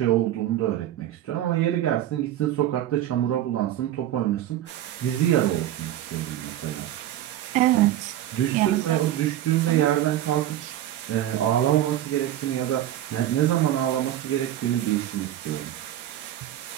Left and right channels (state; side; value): quieter; left; 12.7 dB